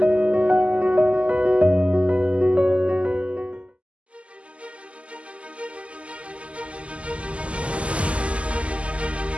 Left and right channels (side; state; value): left; late; 0.059 ms